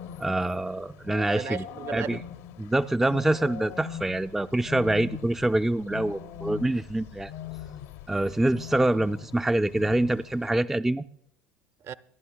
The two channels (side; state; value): both; normal; correlation 0.95